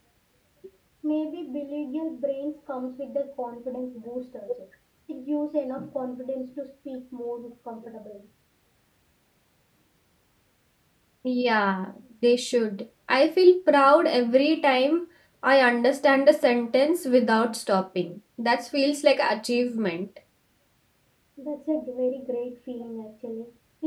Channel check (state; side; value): identical; both; correlation 1.00